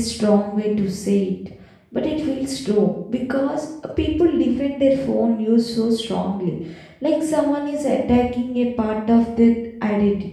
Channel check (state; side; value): identical; both; correlation 1.00